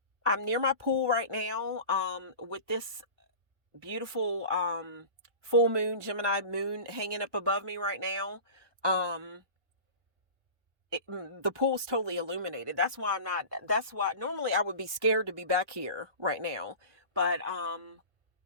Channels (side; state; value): left; late; 1.0 ms